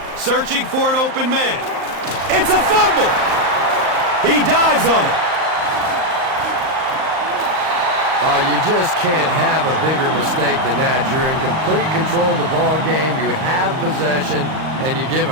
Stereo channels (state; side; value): late; left; 39 ms